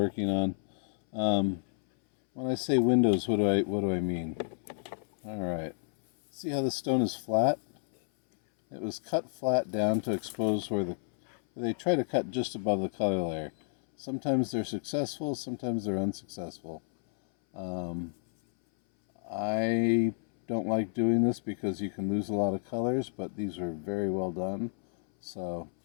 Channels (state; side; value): silent; right; 57 dB below the other